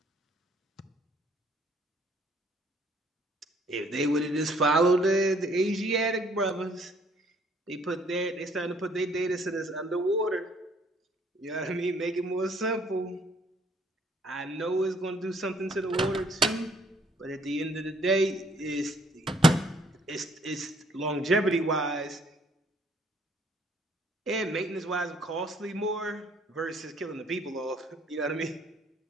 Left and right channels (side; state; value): both; normal; correlation 0.62